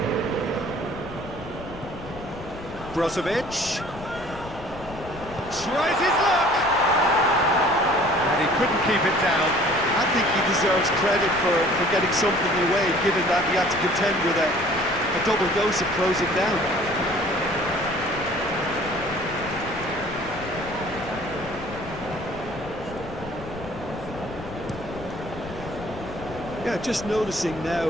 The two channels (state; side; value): noise; left; rumble, 14 dB below the sound